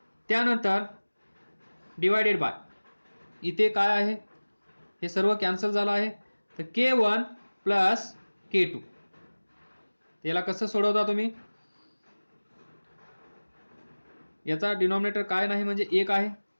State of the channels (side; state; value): both; inverted; correlation -1.00